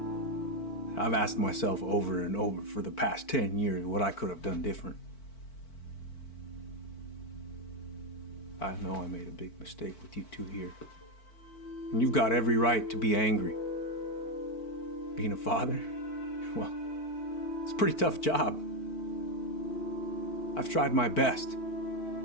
I've asked myself over and over for the past 10 years what I could have done different. I know I made a big mistake with you two here. And you've got every right to be angry. Being a father? Well, it's a pretty tough job. I've tried my best.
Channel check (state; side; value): late; right; 4.5 ms